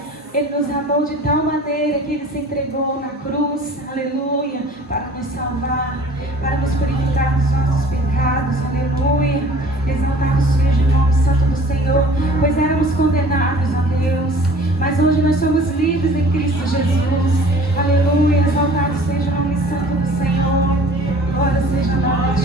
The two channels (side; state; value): both; normal; correlation 0.48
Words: Ele nos amou de tal maneira que Ele se entregou na cruz. Aleluia, para nos salvar, para nos purificar dos nossos pecados. Aleluia, exaltado seja o nome santo do Senhor, pois éramos condenados a Deus, mas hoje nós somos livres em Cristo Jesus. Aleluia, exaltado seja o nome santo do Senhor. Glória seja a nome